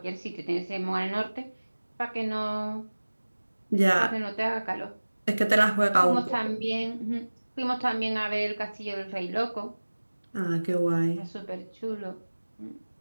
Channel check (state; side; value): inverted; both; correlation -1.00